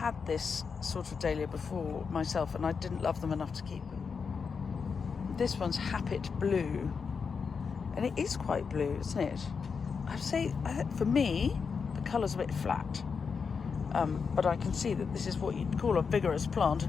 this sort of dahlia before myself, and I didn't love them enough to keep them. This one's Happet Blue. And it is quite blue, isn't it? I'd say, for me, the colour's a bit flat. But I can see that this is what you'd call a vigorous plant,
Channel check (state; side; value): quieter; right; 5.6 dB